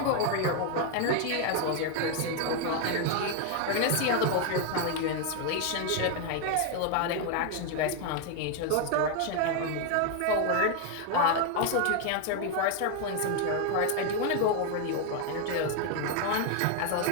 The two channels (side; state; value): both; different; correlation 0.01